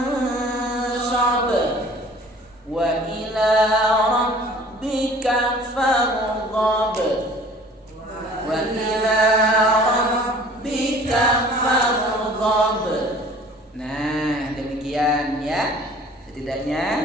Wa ila rabbika farghab. Wa ila rabbika farghab. Nah, demikian ya.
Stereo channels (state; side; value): normal; both; correlation 0.49